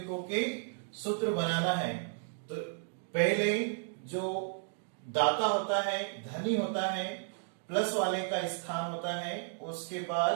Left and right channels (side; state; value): left; silent; digital silence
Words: के सूत्र बनाना है। तो पहले जो दाता होता है, धनी होता है, प्लस वाले का स्थान होता है, उसके